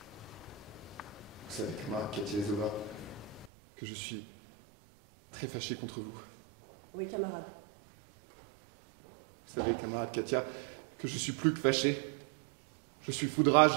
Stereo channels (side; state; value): left; drops out; at 3.5 s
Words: Vous savez, camarade Katia et Zova, que je suis très fâché contre vous. Oui, camarade. Vous savez, camarade Katia, que je suis plus que fâché. Je suis fou de rage.